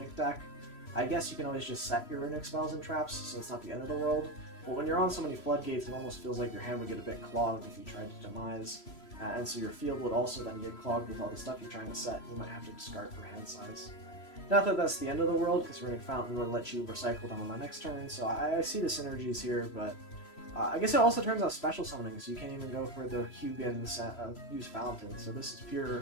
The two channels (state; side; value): late; right; 3.0 ms